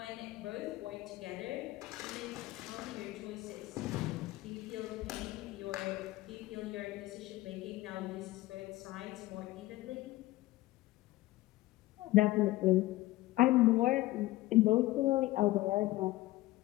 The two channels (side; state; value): right; quieter; 17.8 dB